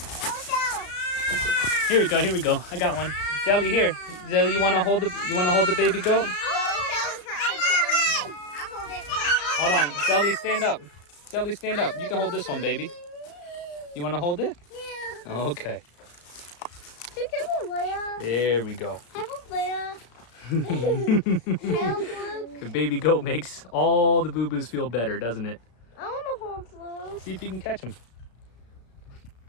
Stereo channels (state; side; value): late; right; 34 ms